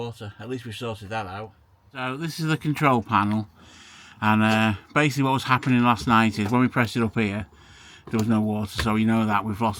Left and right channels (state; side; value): identical; both; correlation 1.00